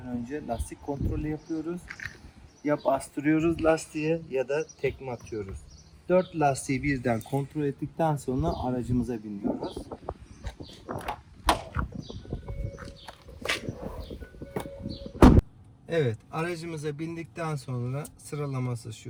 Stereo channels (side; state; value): both; identical; correlation 1.00